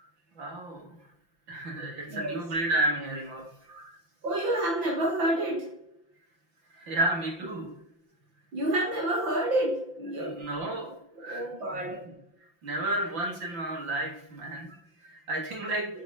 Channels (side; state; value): left; late; 5.9 ms